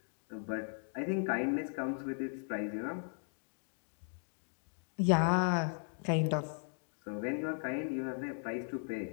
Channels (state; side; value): silent; right; 53 dB below the other